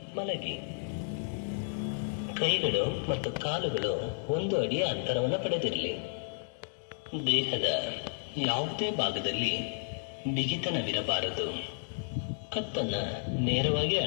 ಮಲಗಿ. ಕೈಗಳು ಮತ್ತು ಕಾಲುಗಳು 1 ಅಡಿಯ ಅಂತರವನ್ನು ಪಡೆದಿರಲಿ. ದೇಹದ ಯಾವುದೇ ಭಾಗದಲ್ಲಿ ಬಿಗಿತನವಿರಬಾರದು. ಕತ್ತನ್ನ ನೇರವಾಗಿ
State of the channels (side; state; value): right; silent; digital silence